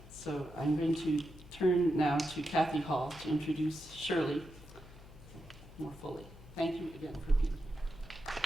So I'm going to turn now to Kathy Hall to introduce Shirley more fully. Thank you again for being here.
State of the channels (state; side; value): noise; left; hum, 18 dB below the sound